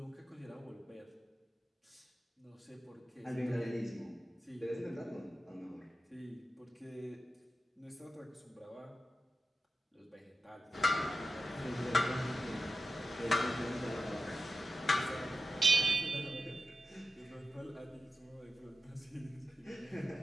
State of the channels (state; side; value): normal; both; correlation 0.91